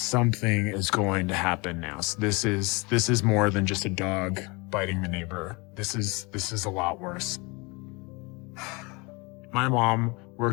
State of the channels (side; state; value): right; quieter; 27.7 dB